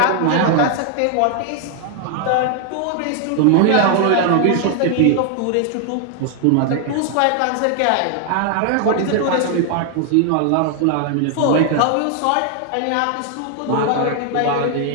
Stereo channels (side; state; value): both; different; correlation 0.00